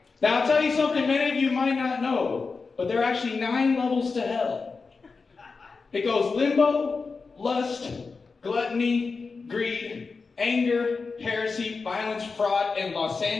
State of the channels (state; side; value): quieter; right; 4.5 dB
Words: Now, I'll tell you something many of you might not know, but there are actually 9 levels to hell. It goes limbo, lust, gluttony, greed, anger, heresy, violence, fraud, and Los